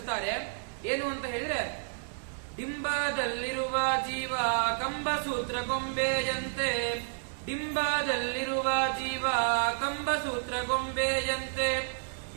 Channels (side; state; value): left; silent; 57 dB below the other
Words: ಏನು ಅಂತ ಹೇಳಿದ್ರೆ, ಡಿಂಬದಲ್ಲಿರುವ ಜೀವ ಕಂಬಸೂತ್ರ ಗೊಂಬೆಯಂತೆ, ಡಿಂಬದಲ್ಲಿರುವ ಜೀವ ಕಂಬಸೂತ್ರ ಗೊಂಬೆಯಂತೆ,